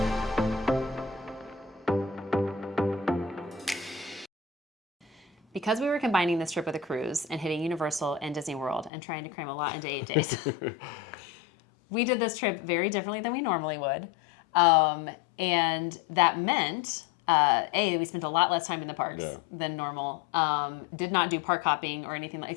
Because we were combining this trip with a cruise and hitting Universal and Disney World and trying to cram a lot into 8 days, we did this trip very differently than we normally would. And that meant, we spent a lot less time in the parks than normal. Did not do park hopping or anything,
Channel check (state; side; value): drops out; right; at 8.9 s